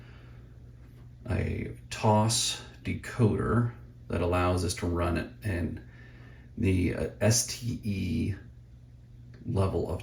TOS decoder that allows us to run it in the STE level of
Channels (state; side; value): identical; both; correlation 1.00